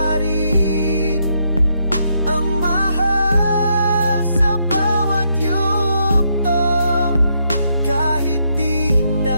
rin ang mahal sa bawat yugto. Kahit di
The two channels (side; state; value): both; inverted; correlation -0.77